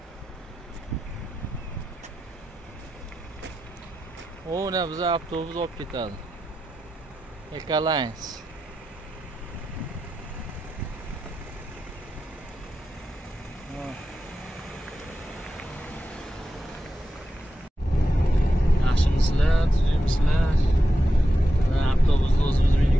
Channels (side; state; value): both; normal; correlation 0.90